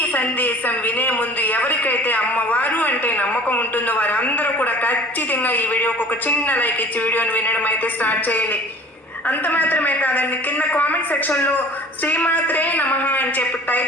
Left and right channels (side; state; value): both; normal; correlation 0.46